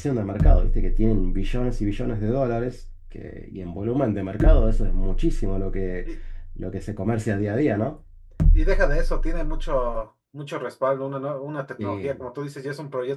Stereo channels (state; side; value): identical; both; correlation 1.00